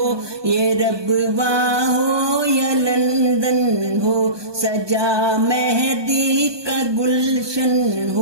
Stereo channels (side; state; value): left; late; 1.2 ms